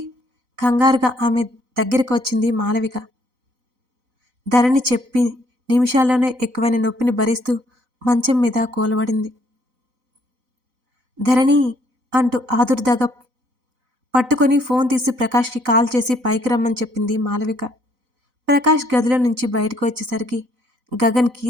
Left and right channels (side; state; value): left; late; 4.0 ms